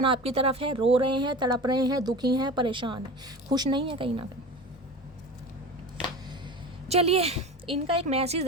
आपकी तरफ है, रो रहे हैं, तड़प रहे हैं, दुखी हैं, परेशान हैं, खुश नहीं है कहीं ना कहीं। चलिए इनका एक मैसेज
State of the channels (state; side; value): normal; both; correlation 0.32